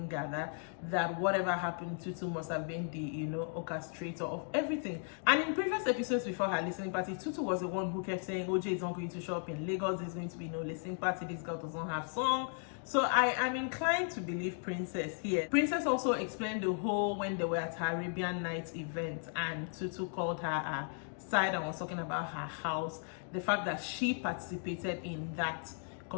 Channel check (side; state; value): right; silent; 54 dB below the other